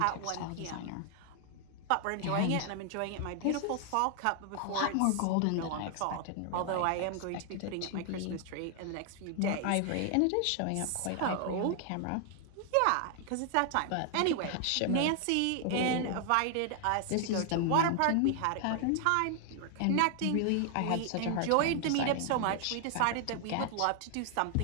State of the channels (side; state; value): both; different; correlation 0.00